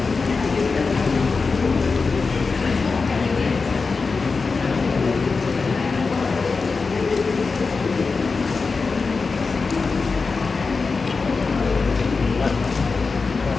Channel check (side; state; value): right; quieter; 4.5 dB